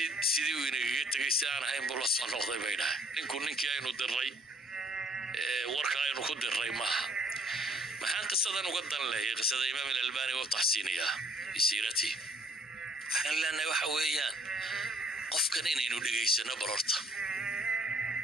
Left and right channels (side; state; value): both; normal; correlation 0.60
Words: سيدي ويني تقيستي أنا هاي مبولص النقضي بينها نكون نكي أينو دري وركا أينو كود دري معها maxaan qisadan uga dan leeyahay qisada Imaam al-Albani oo taxsiiniya isirati waxaan leenahay waxa weeyaan qofkan inaynu dhageysano barorta